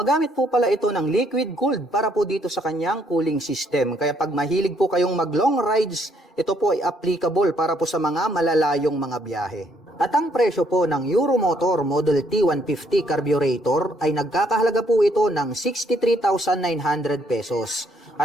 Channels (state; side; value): normal; both; correlation 0.69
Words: po pala ito ng liquid cooled para po dito sa kanyang cooling system. Kaya pag mahilig po kayong mag long rides, ito po ay applicable para po sa mga malalayong mga biyahe. At ang presyo po ng Euromotor Model T150 carburetor ay nagkakahalaga po ito ng 63,900 pesos.